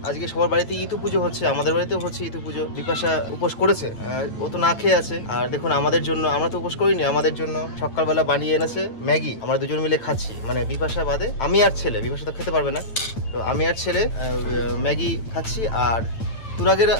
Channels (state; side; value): late; right; 8.9 ms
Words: আজকে সবার বাড়িতে ইতু পুজো হচ্ছে, আমাদের বাড়িতেও হচ্ছে ইতু পুজো। বিপাশা উপোস করেছে, ও তো না খেয়ে আছে। আর দেখুন আমাদের জন্য, আমরা তো উপোস করিনি, আমাদের জন্য সকালবেলা বানিয়ে এনেছে ম্যাগি। আমরা দুজন মিলে খাচ্ছি, মানে বিপাশা বাদে আমি আর ছেলে। বিপাশা তো খেতে পারবে না, তো আমি আর ছেলে ম্যাগি খাচ্ছি। আর তুরাগের